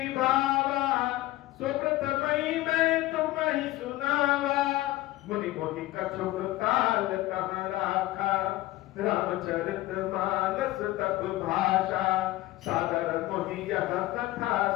भावा, सुप्रथमई मैं तुम ही सुनावा। मुनि मोहि कछुक काल कहाँ राखा, रामचरित मानस तब भाषा। सादर मोहि यह कथा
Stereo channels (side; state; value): right; quieter; 17.0 dB